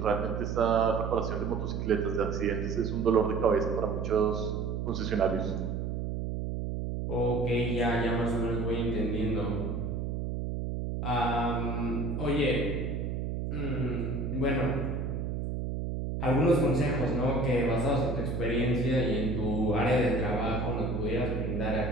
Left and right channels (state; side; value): noise; right; hum, 2 dB below the sound